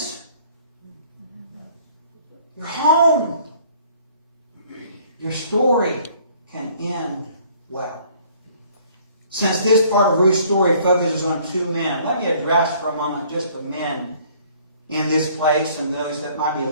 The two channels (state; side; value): inverted; both; correlation -0.58